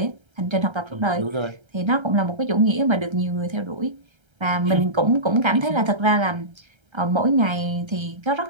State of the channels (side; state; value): left; late; 1.3 ms